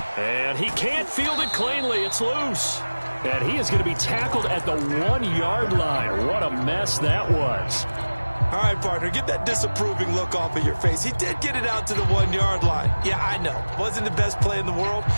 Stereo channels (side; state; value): both; inverted; correlation -1.00